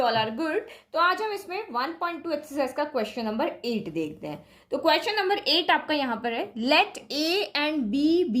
all are good. तो आज हम इसमें 1.2 exercise का question number 8 देखते हैं। तो क्वेश्चन नंबर 8 आपका यहाँ पर है, let A and B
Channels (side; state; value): both; identical; correlation 1.00